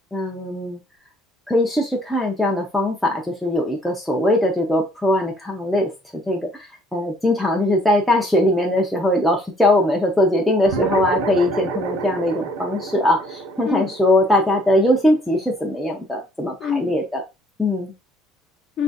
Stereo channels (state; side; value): normal; both; correlation 0.61